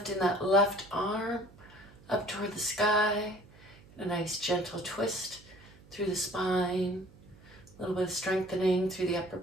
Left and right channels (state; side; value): noise; right; hum, 23 dB below the sound